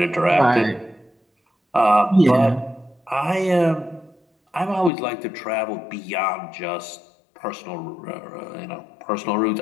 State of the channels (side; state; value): right; drops out; at 4.9 s